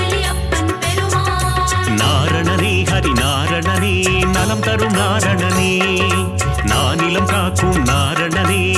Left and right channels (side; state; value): both; identical; correlation 1.00